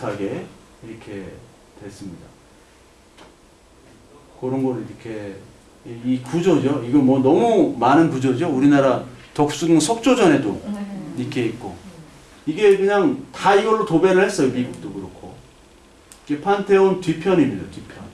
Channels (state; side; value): identical; both; correlation 1.00